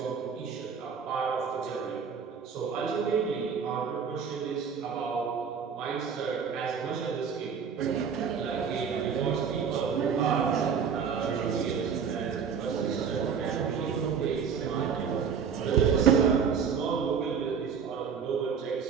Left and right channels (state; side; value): quieter; left; 6.7 dB